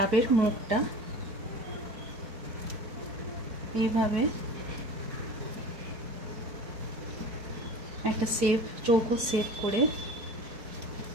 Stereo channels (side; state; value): left; late; 4.7 ms